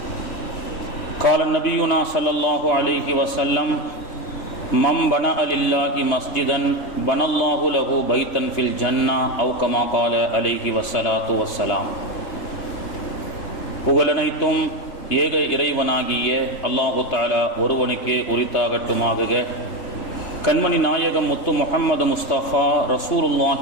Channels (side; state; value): right; late; 3.2 ms